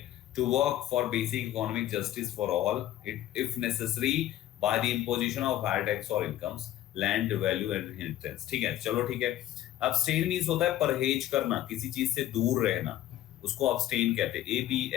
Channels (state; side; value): quieter; right; 13.3 dB